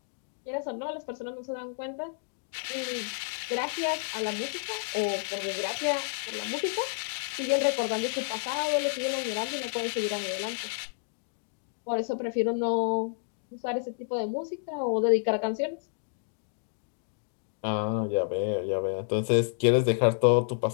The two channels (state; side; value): silent; right; digital silence